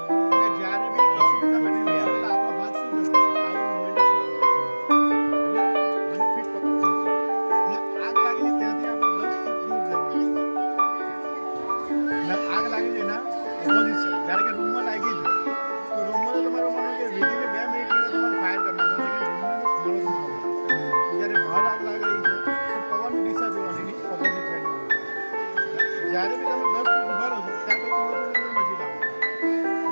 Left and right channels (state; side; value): inverted; both; correlation -1.00